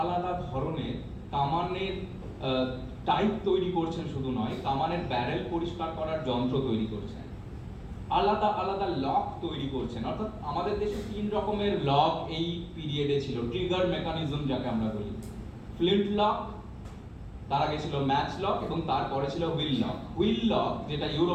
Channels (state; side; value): identical; both; correlation 1.00